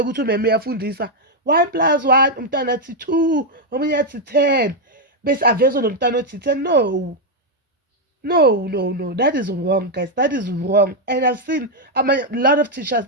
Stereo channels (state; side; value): normal; both; correlation 0.01